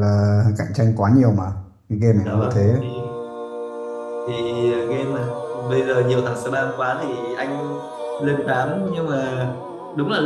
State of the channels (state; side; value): identical; both; correlation 1.00